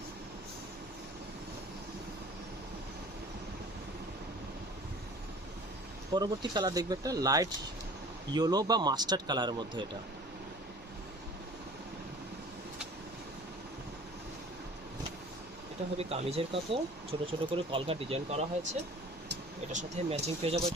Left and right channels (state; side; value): normal; both; correlation 0.46